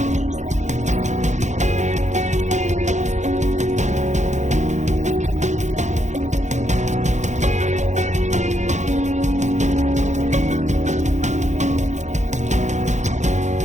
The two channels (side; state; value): left; late; 0.34 ms